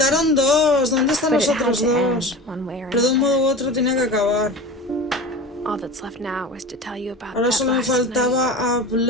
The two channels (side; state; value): both; normal; correlation 0.33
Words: dos. ¿Dónde están But los it had otros to end dos? one way or Pero de un another. modo u otro tenía que acabar. All that's left now was to tell you about Ahora that solo me last night. faltaba